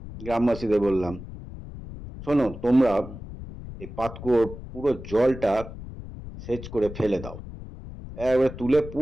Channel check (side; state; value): left; noise; rumble, 12 dB below the sound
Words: গ্রামবাসীদের বললাম, শোনো, তোমরা এই পাতকুয়োর পুরো জলটা সেচ করে ফেলে দাও, একবারে